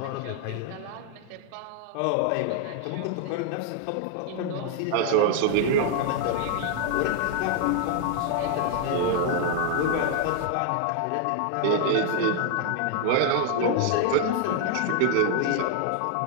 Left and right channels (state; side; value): different; both; correlation 0.00